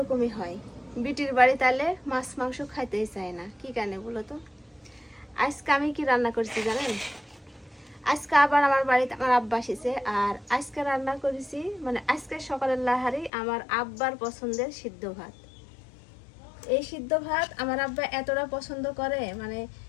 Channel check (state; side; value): drops out; right; at 13.3 s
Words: হয়, বিটির বাড়ি তাহলে মাছ মাংস খাইতেই চায় না, কি কারণে বলো তো। আজকে আমি কি রান্না করছি জানেন? আজকে আবার আমার বাড়িতে আমার আব্বা এসেছে, আর আজকে রান্না করেছি মানে আজকে সকালের লাহারি আমার আব্বার পছন্দের সিদ্ধ ভাত। এই সিদ্ধ ভাত আমার আব্বা এতটা পছন্দ করে, মানে